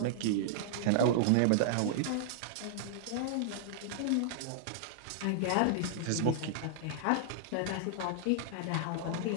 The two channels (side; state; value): both; different; correlation -0.01